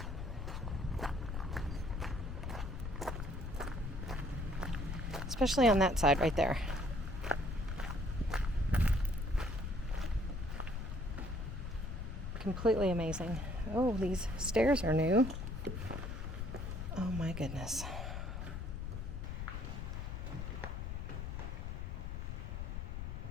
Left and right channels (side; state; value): left; noise; rumble, 5 dB below the sound